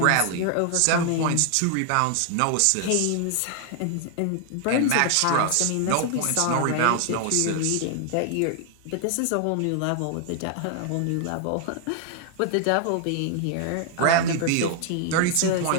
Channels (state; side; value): different; both; correlation 0.00